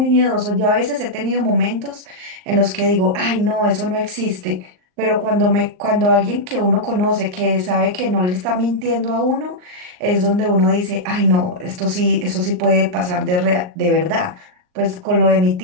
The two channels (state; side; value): late; left; 39 ms